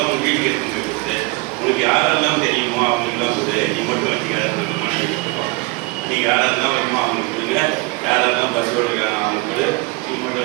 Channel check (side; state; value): left; quieter; 25.0 dB